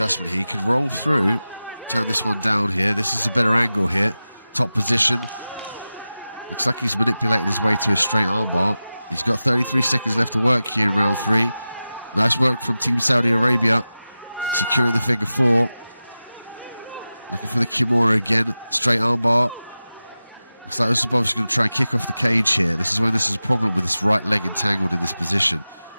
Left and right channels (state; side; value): inverted; both; correlation -0.95